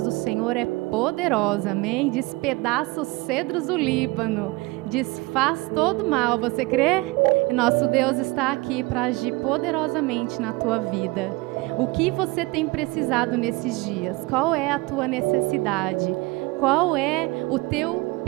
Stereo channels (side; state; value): left; quieter; 23.1 dB